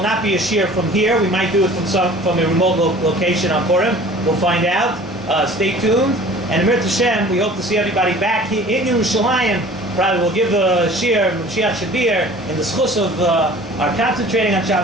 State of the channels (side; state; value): both; normal; correlation 0.46